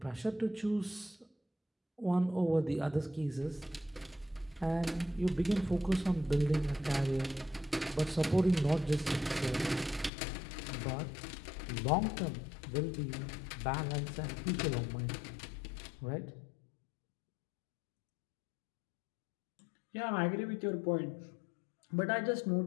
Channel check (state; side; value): drops out; right; at 10.1 s